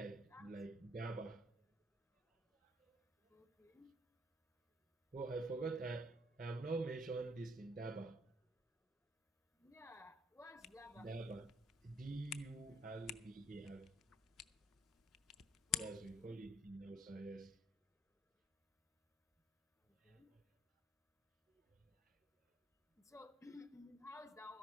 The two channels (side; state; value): both; normal; correlation 0.66